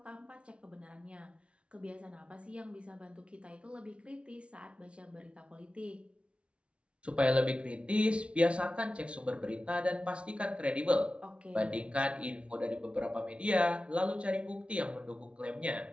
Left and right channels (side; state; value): left; late; 0.060 ms